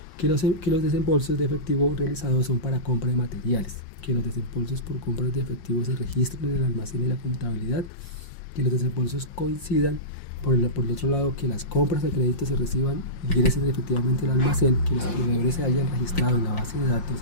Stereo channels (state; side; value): late; right; 5.6 ms